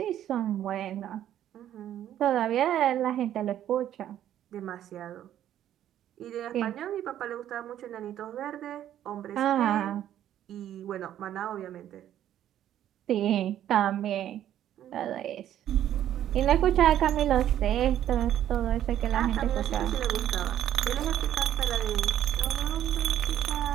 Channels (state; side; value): quieter; left; 11.4 dB